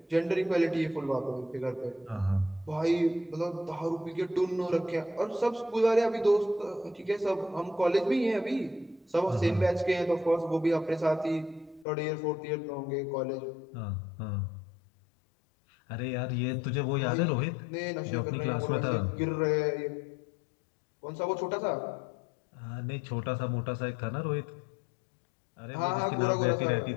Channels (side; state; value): right; drops out; at 11.9 s